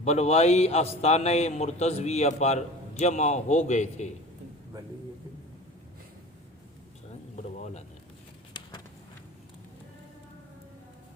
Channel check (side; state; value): both; normal; correlation 0.37